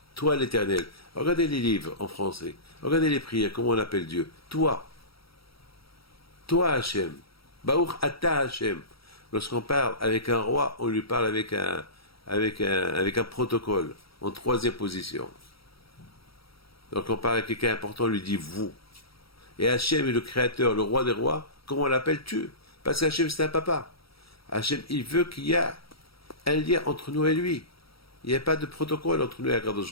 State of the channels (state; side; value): late; right; 0.75 ms